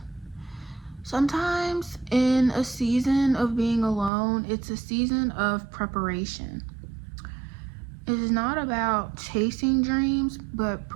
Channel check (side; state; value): left; drops out; at 4.1 s